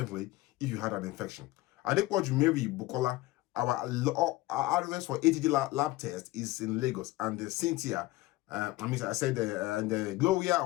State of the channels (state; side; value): quieter; right; 18.8 dB